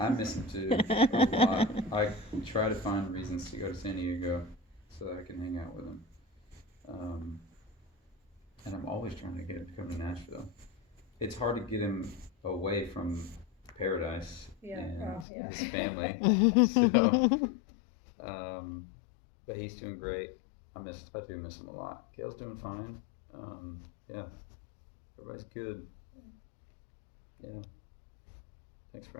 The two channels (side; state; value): right; drops out; at 15.2 s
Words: miss him too a lot. I try to find reasons to go to San Diego so that I can hang out with him. And I'm always trying to get him to come to Nashville. It's hard to get him away from paradise Yeah, and well, yeah. his family. So, but he's doing great. I do miss him a lot. Gail's doing fine. Yeah, everybody's good. Yeah. Thanks